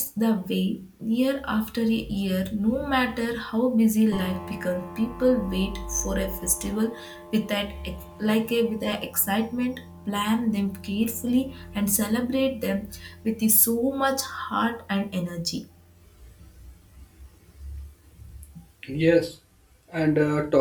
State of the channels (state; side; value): identical; both; correlation 1.00